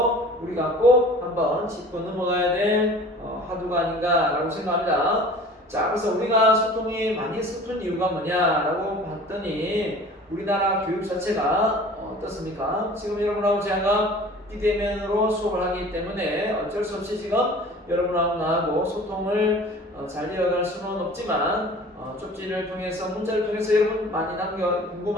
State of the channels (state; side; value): normal; both; correlation 0.44